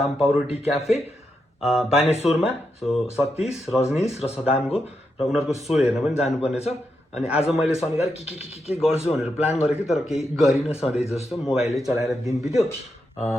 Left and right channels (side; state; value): both; normal; correlation 0.84